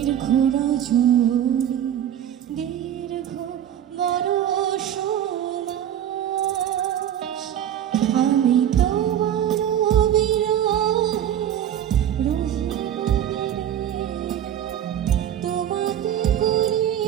রজনী দীর্ঘ বরষ মাস। আমি তোমার বিরহে তোমাতে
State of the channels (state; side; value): quieter; left; 10.4 dB